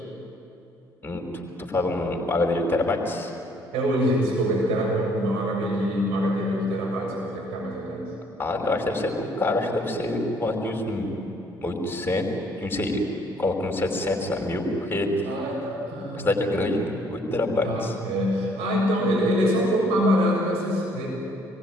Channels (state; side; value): normal; both; correlation 0.63